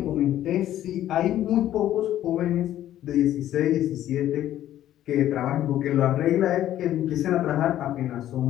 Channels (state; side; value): quieter; right; 12.5 dB